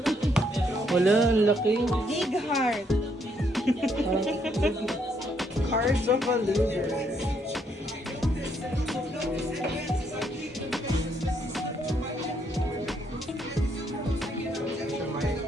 Wala, ang laki. Big heart. Cards of a loser.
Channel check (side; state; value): both; normal; correlation 0.72